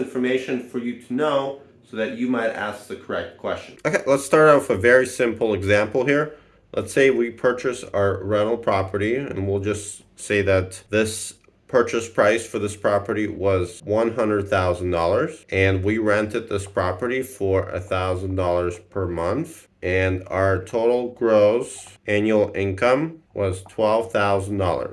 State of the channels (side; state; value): both; identical; correlation 1.00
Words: for you to know so that you might ask the correct question. Okay, let's start out with a very simple example here. Let's say we purchase our rental property, and we'll just say that this purchase price for this property was $100,000, and we rented this property for $1,000 per month, and our total gross annual income was